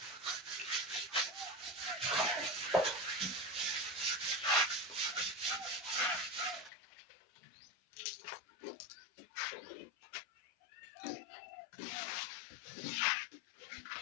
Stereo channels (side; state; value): right; drops out; at 6.7 s